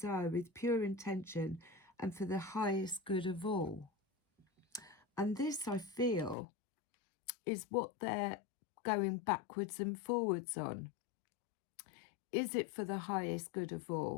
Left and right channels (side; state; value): right; drops out; at 6.4 s